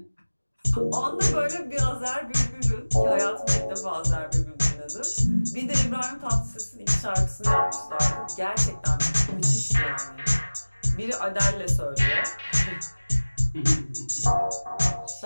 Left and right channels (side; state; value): both; inverted; correlation -1.00